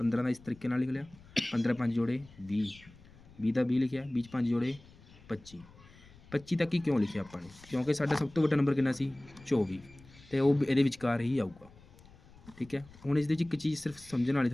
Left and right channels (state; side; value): noise; left; rumble, 23 dB below the sound